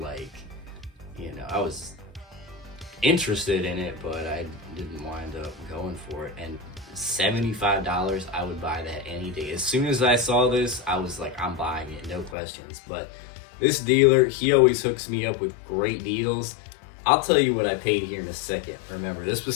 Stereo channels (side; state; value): right; drops out; at 12.4 s